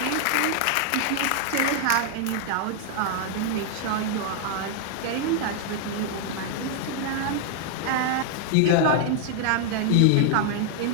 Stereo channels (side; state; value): both; different; correlation 0.00